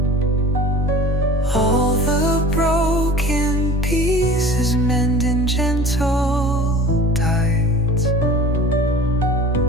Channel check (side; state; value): both; normal; correlation 0.41